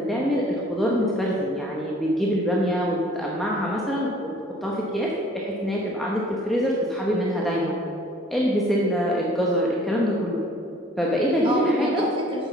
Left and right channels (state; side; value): normal; both; correlation 0.54